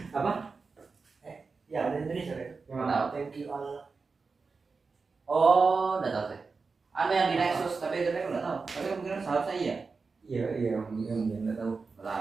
Apa? Ya ada Indonesia ya. Yang tahu? Thank you Allah. Oh, udah tahu sih. Ada yang di Nexus, tapi itu aku nggak tahu. Tapi kemungkinan seharusnya iya. Iya, nggak tahu.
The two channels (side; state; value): left; quieter; 4.5 dB